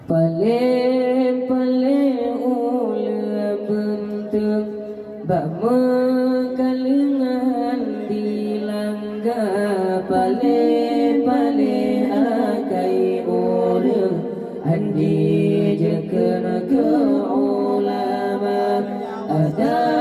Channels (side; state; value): both; identical; correlation 1.00